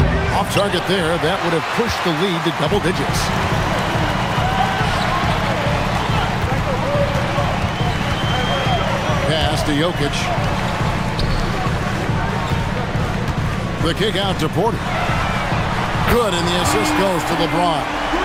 Off target there. That would have pushed the lead to double digits. Pass to Jokic. The kick out to Porter. Good, and the assist goes to LeBron.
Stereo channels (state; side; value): identical; both; correlation 1.00